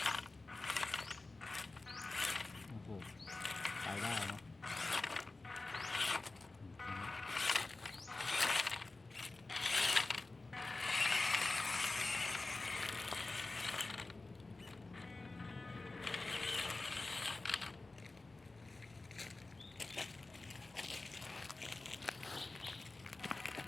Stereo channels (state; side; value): quieter; right; 3.3 dB